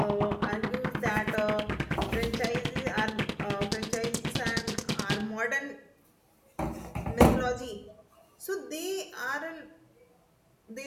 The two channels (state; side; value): identical; both; correlation 1.00